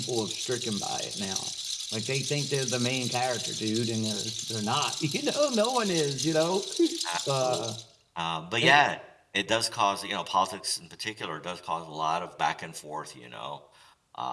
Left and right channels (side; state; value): both; identical; correlation 1.00